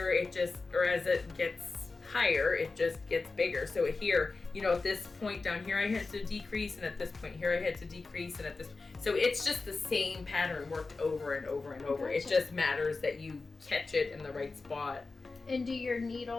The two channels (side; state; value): right; quieter; 3.9 dB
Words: as it gets higher, it just gets bigger. So here, at this point down here, I had to decrease, and at this point here, I had to decrease, and so it's just the same pattern worked over and over and over. Gotcha. It just matters that you catch it in the right spot. And do your